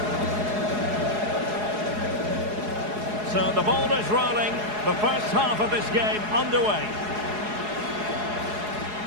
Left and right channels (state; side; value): late; left; 4.8 ms